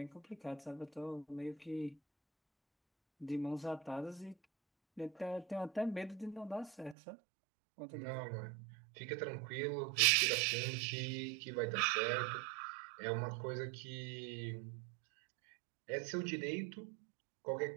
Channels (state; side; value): drops out; left; at 7.0 s